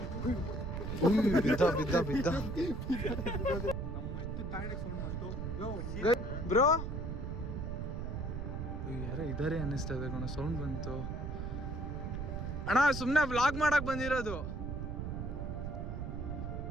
ಬಿದ್ದ ಬಿದ್ದ ಬಿದ್ದ ನಮ್ಮ ಎಷ್ಟು ತಾಯಿಗೆ ಸೌಂಡ್ ಬಂತು ಬ್ರೋ ಯಾರೋ ಇದಾರೆ ಅನ್ನಿಸ್ತಾ ಇದೆ ಕಣ, ಸೌಂಡ್ ಬಂತು ಅಣ್ಣ. ಸುಮ್ನೆ ವ್ಲಾಗ್ ಮಾಡಕ್ ಬಂದಿರೋದು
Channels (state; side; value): noise; right; rumble, 4 dB below the sound